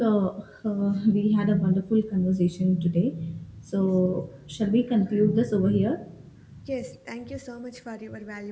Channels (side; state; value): both; identical; correlation 1.00